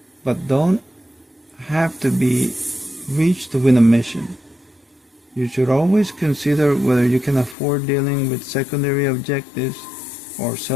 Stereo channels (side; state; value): right; drops out; at 7.6 s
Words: but don't have to be reached to win a mission. You should always consider whether you can afford dealing with secondary objectives or